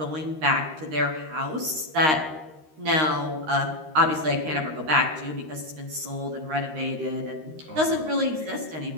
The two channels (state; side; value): late; left; 13 ms